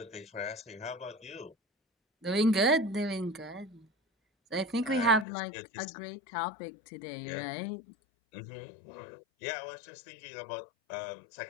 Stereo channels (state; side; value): drops out; right; at 5.2 s